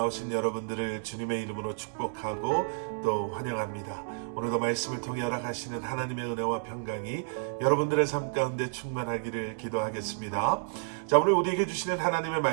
여러분들을 주님의 이름으로 축복하고 또 환영합니다. 오늘도 말씀을 통해 허락하시는 하나님의 은혜와 평강이 여러분들의 삶 가운데 충만하기를 기도하겠습니다. 자, 오늘 우리에게 주시는 하나님의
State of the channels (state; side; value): silent; left; digital silence